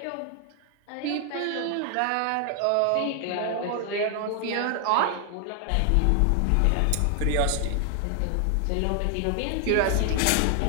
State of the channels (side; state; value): both; different; correlation 0.00